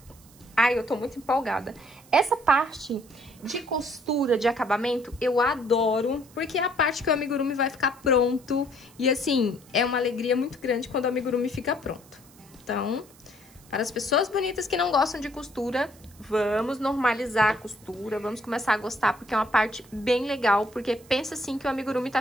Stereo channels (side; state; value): right; noise; hiss, 25 dB below the sound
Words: Ai, eu tô muito empolgada. Essa parte de costura, de acabamento, eu adoro, porque é a parte que o amigurumi vai ficar pronto. E assim, é uma alegria muito grande quando o amigurumi fica pronto. Então, para as pessoas bonitas que não gostam de costura, vamos normalizar a costura, vamos começar a gostar, porque é uma parte bem legal, porque pensa assim que o amigurumi tá